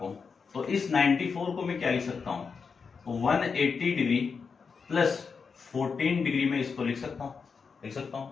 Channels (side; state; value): right; quieter; 5.5 dB